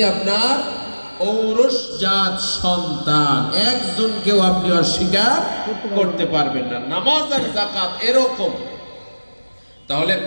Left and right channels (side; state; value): both; inverted; correlation -1.00